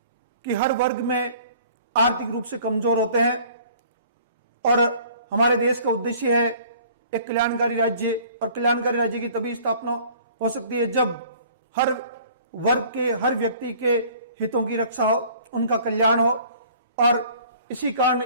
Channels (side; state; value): both; inverted; correlation -0.52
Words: कि हर वर्ग में आर्थिक रूप से कमजोर होते हैं और हमारे देश का उद्देश्य है एक कल्याणकारी राज्य, और कल्याणकारी राज्य की तभी स्थापना हो सकती है जब हर वर्ग के, हर व्यक्ति के हितों की रक्षा हो, उनका कल्याण हो। और इसी कारण